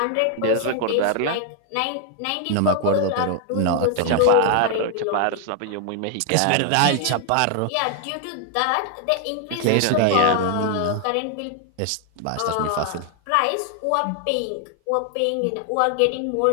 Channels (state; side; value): different; both; correlation 0.00